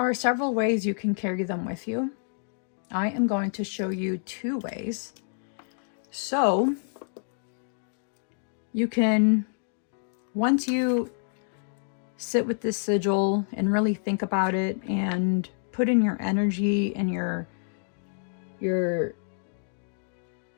several ways you can carry them with you. I am going to show you 2 ways. So you can, once you sit with this sigil and really think about it and put in your energy and your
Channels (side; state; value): right; silent; digital silence